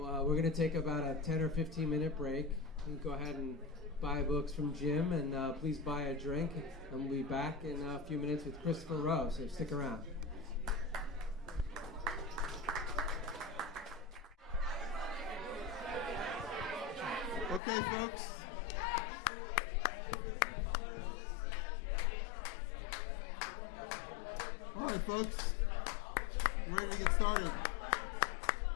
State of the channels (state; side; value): drops out; right; at 17.6 s